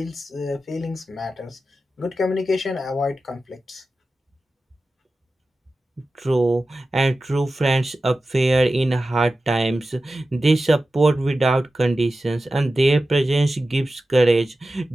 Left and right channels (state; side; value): normal; both; correlation 0.94